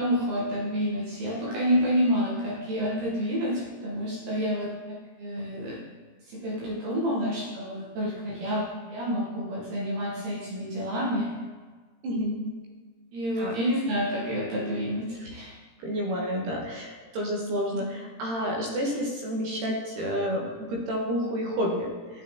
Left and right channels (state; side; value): late; left; 18 ms